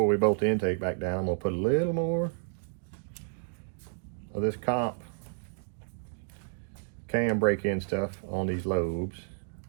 we bolt the intake back down, I'm gonna put a little more of this comp cam break-in stuff on these lobes.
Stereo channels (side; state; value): left; silent; digital silence